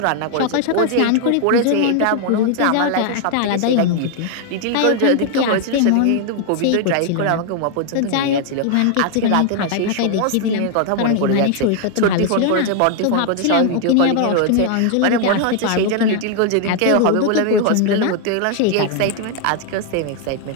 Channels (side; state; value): both; different; correlation 0.00